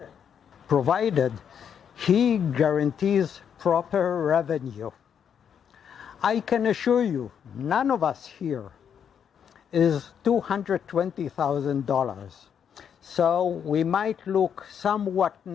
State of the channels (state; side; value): quieter; right; 8.0 dB